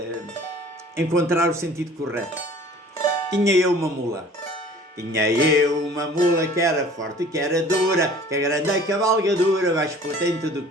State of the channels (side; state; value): both; normal; correlation 0.49